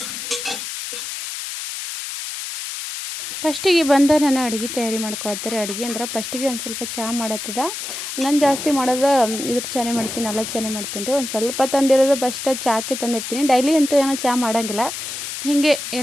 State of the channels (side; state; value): left; noise; hiss, 6 dB below the sound